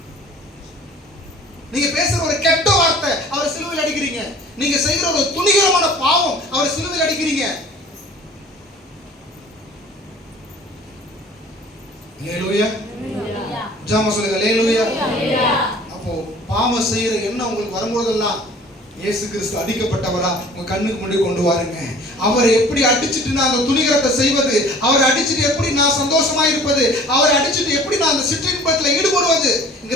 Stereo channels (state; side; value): normal; both; correlation 0.48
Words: நீங்க பேசுற ஒரு கெட்ட வார்த்தை அவரை சிலுவையில் அடிக்கிறீங்க. நீங்க செய்கிற ஒரு துணிகரமான பாவம் அவரை சிலுவையில் அடிக்கிறீங்க. அல்லேலூயா. ஜாம சொல்லுங்க. அல்லேலூயா. அப்போ பாவம் செய்யற எண்ணம் உங்களுக்கு வரும்போதெல்லாம் இயேசு கிறிஸ்து அடிக்கப்பட்டவரா உங்க கண்ணுக்கு முன்னாடி கொண்டு வாருங்க. அவரை எப்படி அடிச்சுட்டு நான் அந்த துணிகரத்தை செய்வது, அவரை அடிச்சுட்டு எப்படி நான் சந்தோஷமா இருப்பது, அவரை அடிச்சுட்டு எப்படி நான் அந்த சிற்றின்பத்தில்